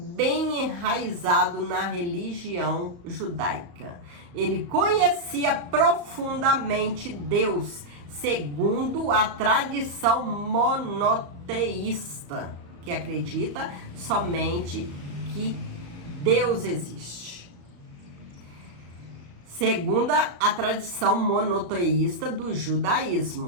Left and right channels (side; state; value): left; late; 34 ms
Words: enraizado na religião judaica. Ele conhecia profundamente Deus, segundo a tradição monoteísta, que acredita somente que Deus existe. Segundo a tradição monoteísta do